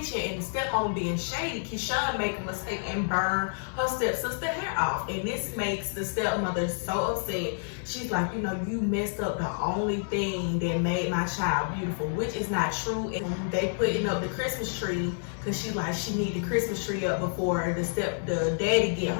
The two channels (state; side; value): silent; right; digital silence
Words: and the stepmom being shady, Keyshawn make a mistake and burn her stepsister hair off. And this makes the stepmother so upset. She's like, you know, you messed up the only thing that made my child beautiful, which is not true. And they putting up the Christmas tree because she's like, she need the Christmas tree up before the daddy get